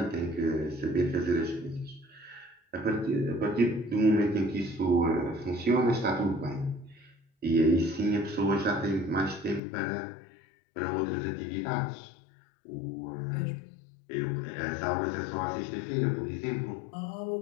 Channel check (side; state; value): right; drops out; at 9.6 s